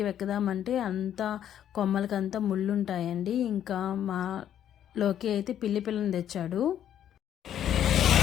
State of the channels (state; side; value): quieter; right; 10.3 dB